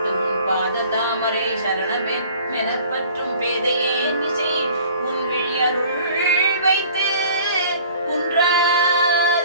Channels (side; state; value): both; inverted; correlation -0.50